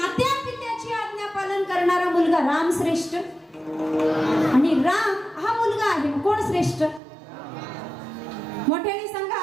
पित्याची आज्ञा पालन करणारा मुलगा राम श्रेष्ठ? आणि राम हा मुलगा आहे, कोण श्रेष्ठ? मोठ्याने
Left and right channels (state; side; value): drops out; left; at 7.0 s